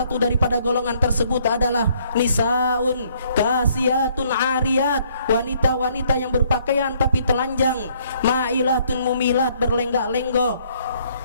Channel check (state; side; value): inverted; both; correlation -0.65